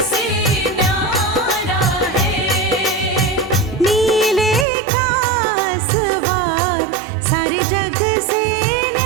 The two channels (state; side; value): drops out; left; at 4.7 s